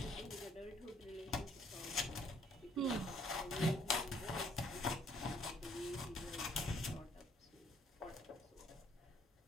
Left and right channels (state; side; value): normal; both; correlation 0.63